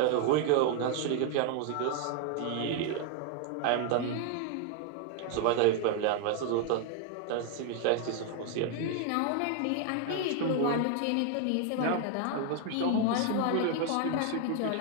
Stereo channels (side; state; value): both; different; correlation 0.01